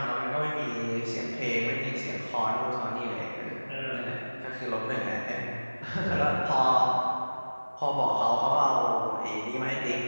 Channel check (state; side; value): inverted; both; correlation -1.00